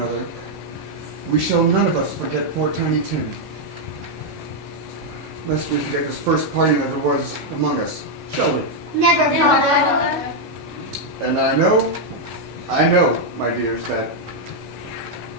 we shall none of us forget poor Tiny Tim. Lest we forget this first parting that there was among us, shall we? Never, Father. And I know, my dears, that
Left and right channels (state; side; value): normal; both; correlation -0.01